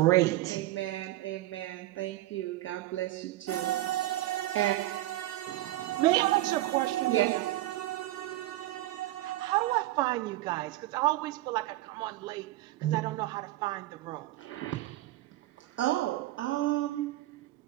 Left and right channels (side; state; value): left; quieter; 16.3 dB